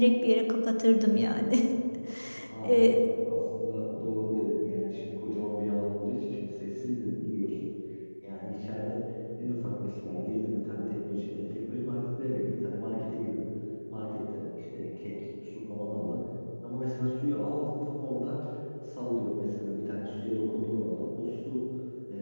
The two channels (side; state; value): both; inverted; correlation -1.00